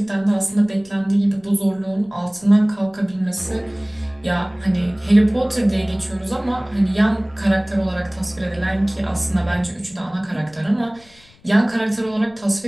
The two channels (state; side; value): noise; left; rumble, 28 dB below the sound